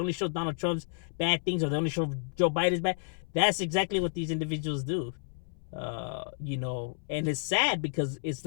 show Donald Trump's bad things, or they only show Joe Biden's bad. That's exactly what these individuals do. And it's sad because it's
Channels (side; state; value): right; silent; 57 dB below the other